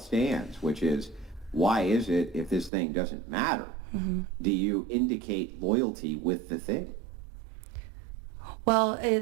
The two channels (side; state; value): left; drops out; at 2.7 s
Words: which is, why is it, if this thing doesn't matter, do you indicate loyalty with the thing? Well,